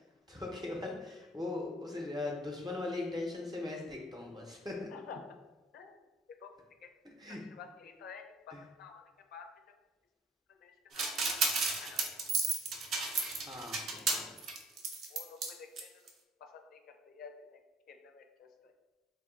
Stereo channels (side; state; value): both; normal; correlation 0.56